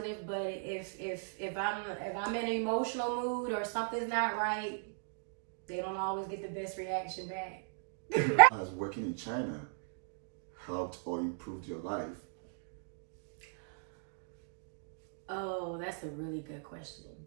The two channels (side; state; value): left; silent; digital silence